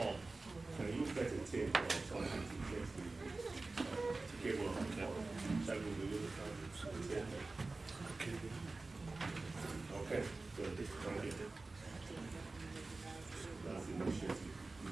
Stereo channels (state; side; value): quieter; left; 3.4 dB